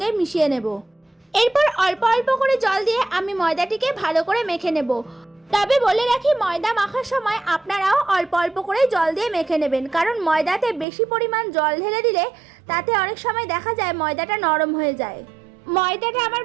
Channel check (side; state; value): left; drops out; at 10.9 s